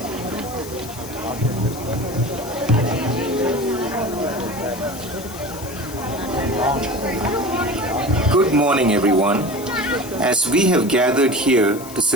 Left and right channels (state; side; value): noise; left; hiss, 15 dB below the sound